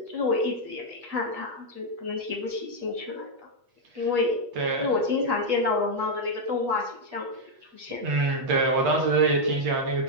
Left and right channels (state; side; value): late; left; 8.3 ms